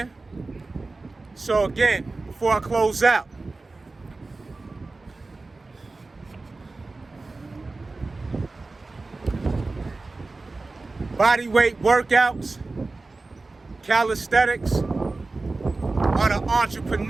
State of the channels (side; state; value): left; quieter; 3.5 dB